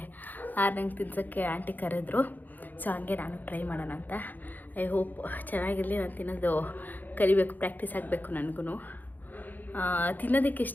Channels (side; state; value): right; late; 0.085 ms